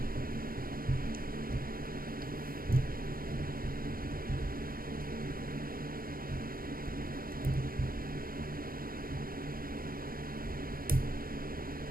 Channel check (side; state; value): left; late; 0.42 ms